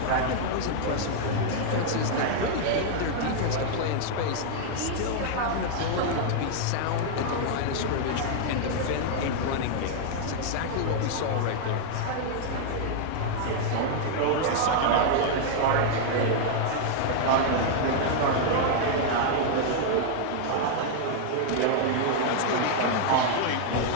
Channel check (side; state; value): both; different; correlation 0.00